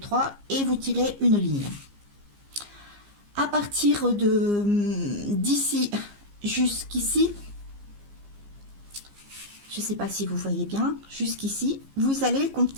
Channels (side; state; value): left; late; 15 ms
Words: et vous tirez une ligne. partir de d'ici jusqu'ici, je ne sais pas si vous voyez bien, jusqu'ici, vous allez